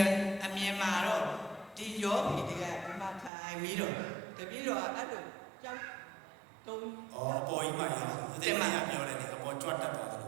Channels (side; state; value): left; drops out; at 3.3 s